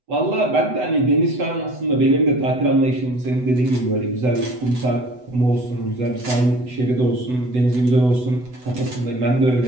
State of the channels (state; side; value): late; left; 8.0 ms